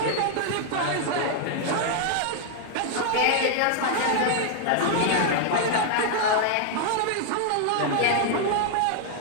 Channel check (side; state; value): both; different; correlation 0.00